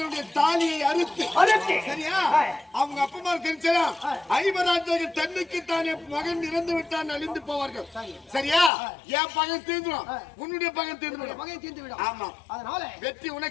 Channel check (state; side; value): drops out; right; at 8.7 s